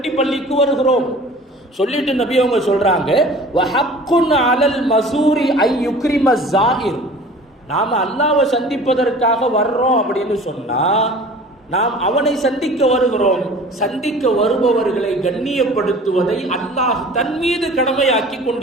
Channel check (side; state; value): both; normal; correlation 0.44